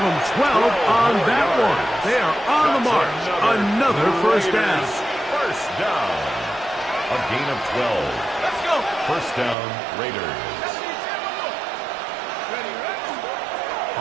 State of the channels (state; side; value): drops out; left; at 9.6 s